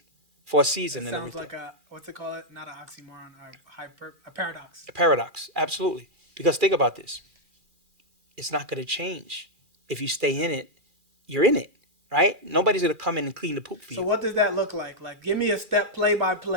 and Sounds everything. like a what they call it, not an oxymoron, a paradox. A paradox. Absolutely. Because think about this. It's not going to change. If you stay in it, you're in it, right? Nobody's going to come in and clean the poop for So you. what does that look like? Like, give me a step play by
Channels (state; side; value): late; left; 2.4 ms